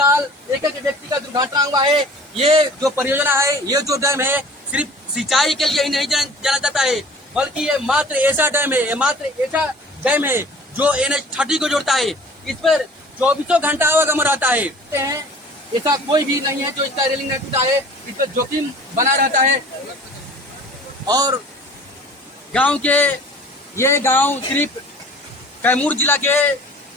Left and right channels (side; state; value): both; normal; correlation 0.46